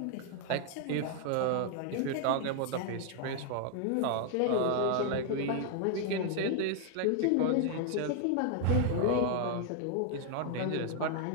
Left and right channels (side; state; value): both; different; correlation 0.00